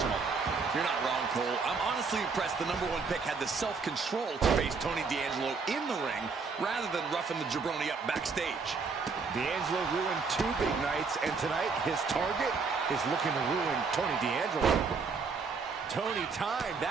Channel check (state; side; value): quieter; left; 4.9 dB